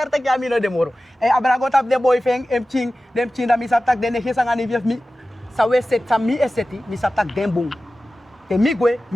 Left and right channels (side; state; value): both; normal; correlation 0.95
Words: tak yamino de moro. Abrago tap de boyfriend em ching dem ching da mi saptak de ne gesanga ni vief mi. Sawe set sa mi eseti mi saptak dem bung. Te mi gwe